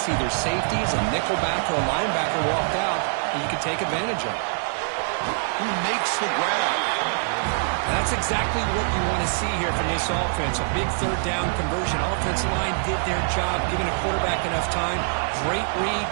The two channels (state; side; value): silent; left; digital silence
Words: either safeties, a nickelback, or a linebacker walked out, and you can take advantage of it. Who makes the grab? That's exactly what you want to see here from this offense. A big third down conversion. Offensive line did their job, giving a quarterback enough time. Great read,